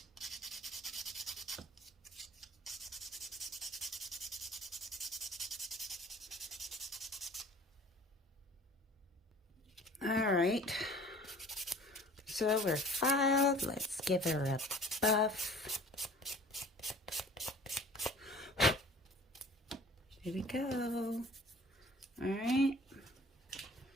All right. So we're filed. Let's give her a buff. Here we go. All right.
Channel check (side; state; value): both; normal; correlation 0.48